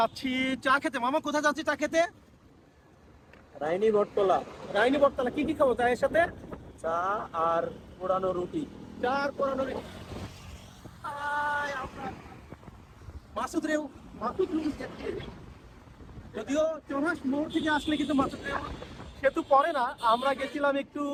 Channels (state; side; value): identical; both; correlation 1.00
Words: চা খেতে। মামা কোথায় যাচ্ছি চা খেতে? রাইনি বটতলা। রাইনি বটতলা। কি কি খাবো চায়ের সাথে? চা আর পোড়ানো রুটি। চা আর পোড়ানো রুটি। মাসুদ রেউ, মাসুদ রেউ যাচ্ছে। যদিও চৌরাস মোড় থেকে আসলে কিন্তু মাসুদ রেউ সেতু পড়ে না। আমরা গেছিলাম একটু